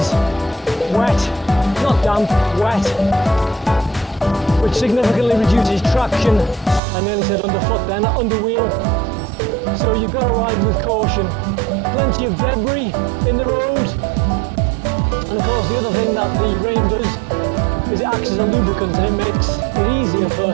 wet, not damp, wet, which significantly reduces traction. I nearly said underfoot then, under wheel. So you've got to ride with caution. Plenty of debris in the road. And of course the other thing that the rain does is it acts as a lubricant and it makes it easier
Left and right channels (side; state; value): left; drops out; at 6.8 s